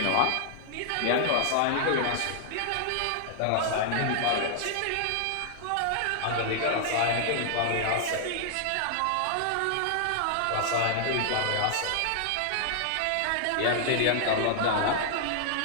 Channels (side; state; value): both; different; correlation -0.01